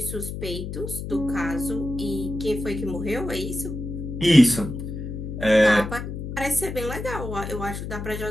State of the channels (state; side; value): noise; left; hum, 6 dB below the sound